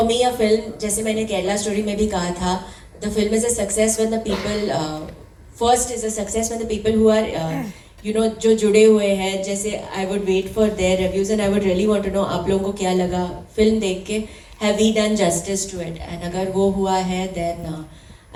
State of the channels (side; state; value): both; identical; correlation 1.00